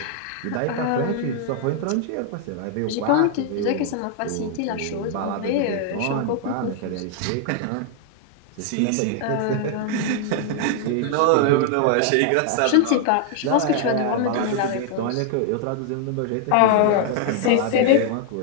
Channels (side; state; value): both; different; correlation 0.00